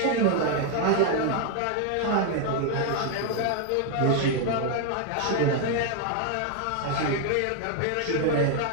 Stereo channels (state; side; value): different; both; correlation 0.00